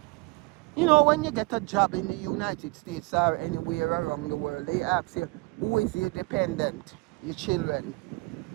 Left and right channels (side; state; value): left; quieter; 26.1 dB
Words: You know, when you get a job in the United States or anywhere around the world, they ask you, who is your dependent? Your children.